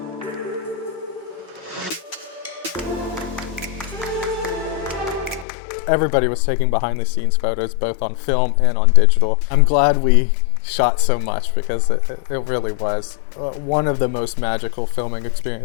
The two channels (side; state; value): right; drops out; at 5.5 s